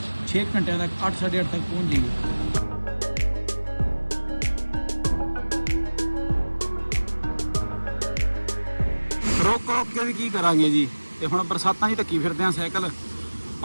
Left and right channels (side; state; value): both; inverted; correlation -1.00